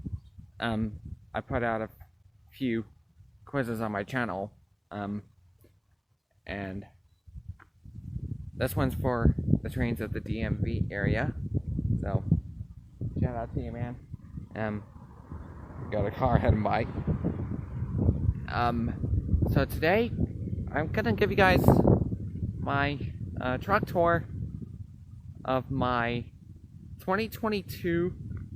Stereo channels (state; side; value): identical; both; correlation 1.00